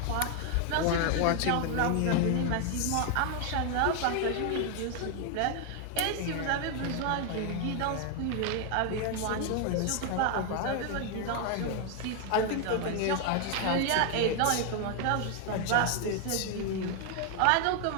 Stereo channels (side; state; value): both; different; correlation 0.00